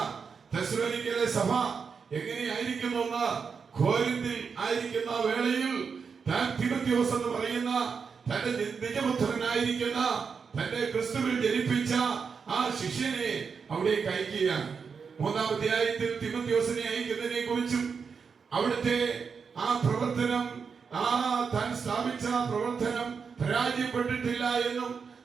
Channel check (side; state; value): left; quieter; 5.8 dB